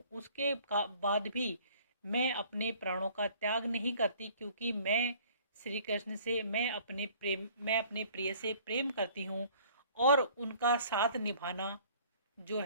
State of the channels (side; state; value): both; inverted; correlation -0.54